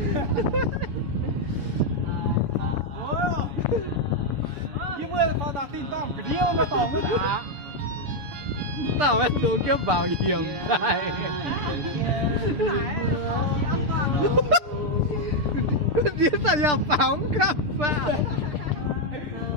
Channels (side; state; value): left; late; 6.8 ms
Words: Như mưa con ta tin tỏng cái điêu nó tỏng cái đã. Tao ấy xuống kiếp bảo hiểm này. Dia saya paham apa?